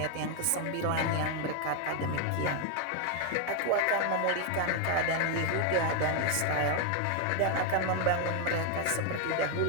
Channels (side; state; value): both; different; correlation 0.01